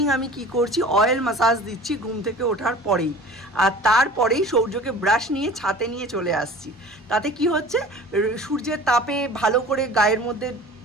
আমি কি করছি, অয়েল ম্যাসাজ দিচ্ছি ঘুম থেকে ওঠার পরেই, আর তারপরেই সৌর্যকে ব্রাশ নিয়ে ছাতে নিয়ে চলে আসছি। তাতে কি হচ্ছে, সূর্যের তাপে ভালো করে গায়ের মধ্যে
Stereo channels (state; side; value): normal; both; correlation 0.42